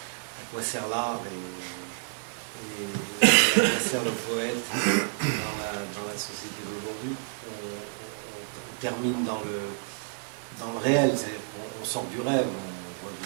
À quoi sert l'art et à quoi sert le poète dans la société d'aujourd'hui. On termine dans le réel, c'est-à-dire qu'on sort du rêve, on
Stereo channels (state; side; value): silent; left; digital silence